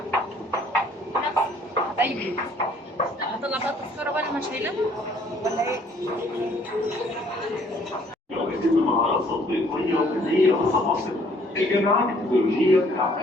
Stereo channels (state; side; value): normal; both; correlation 0.61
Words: حبايبي هطلع بقى التذكره بقى، انا مش شايلاها ولا ايه؟ يتم مهارات تطبيقية وفنية متواصلة. الجامعات التكنولوجية